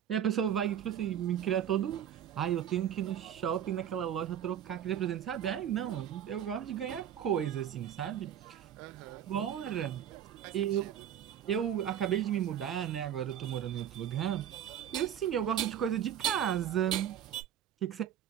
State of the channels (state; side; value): quieter; left; 9.8 dB